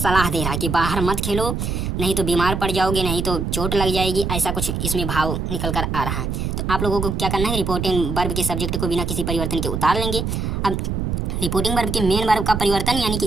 दे रहा है कि बाहर मत खेलो, नहीं तो बीमार पड़ जाओगे, नहीं तो चोट लग जाएगी, ऐसा कुछ इसमें भाव निकल कर आ रहा है। तो आप लोगों को क्या करना है, रिपोर्टिंग वर्ब के सब्जेक्ट को बिना किसी परिवर्तन के उतार लेंगे। अब रिपोर्टिंग वर्ब के मेन वर्ब का परिवर्तन, यानी कि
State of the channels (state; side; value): noise; right; rumble, 2 dB below the sound